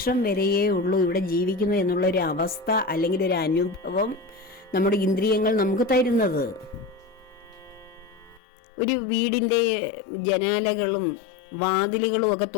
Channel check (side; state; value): right; drops out; at 8.4 s